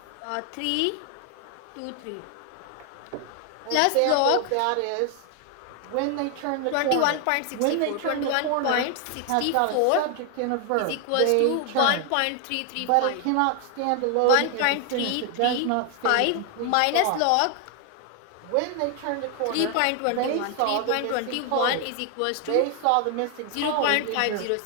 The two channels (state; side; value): different; both; correlation 0.00